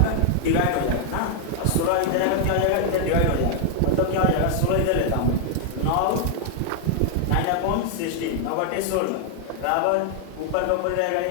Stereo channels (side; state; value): both; different; correlation 0.00